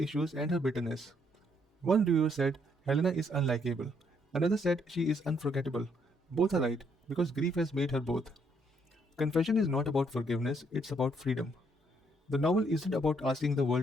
and her bitterness. One reviewer said Helena is unlikable. Another said she is unforgettable. Both are right, because grief has made her both. Confession is not about forgiveness, it's about freedom. The novel isn't about asking the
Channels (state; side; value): normal; both; correlation 0.71